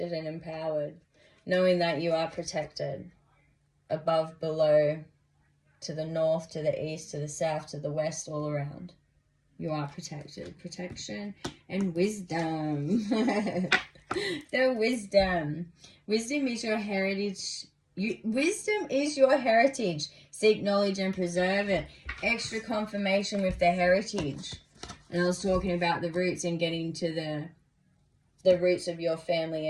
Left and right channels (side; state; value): both; identical; correlation 1.00